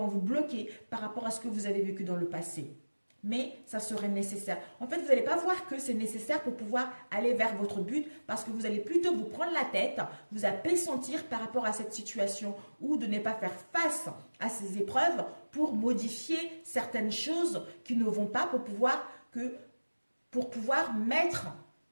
vous bloquer par rapport à ce que vous avez vécu dans le passé. Mais ça serait nécessaire. En fait, vous n'allez pas voir que c'est nécessaire pour pouvoir aller vers votre but parce que vous allez plutôt vous prendre la tête, vous appessentir par rapport à cette situation ou de ne pas faire face à ces épreuves pour modifier certaines choses qui ne vont pas pour pouvoir mettre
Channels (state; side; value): inverted; both; correlation -1.00